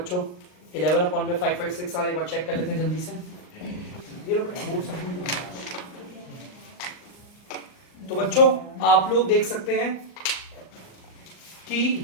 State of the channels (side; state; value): right; late; 39 ms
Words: 11 अपॉन में 556 आ रहा है, एक बार चेक कर लेते हैं जल्दी से। तो बच्चों आप लोग देख सकते हैं कि